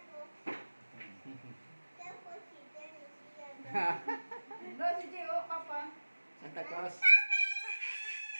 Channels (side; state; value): both; inverted; correlation -1.00